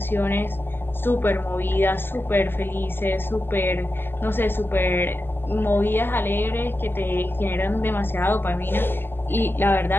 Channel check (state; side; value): late; right; 0.10 ms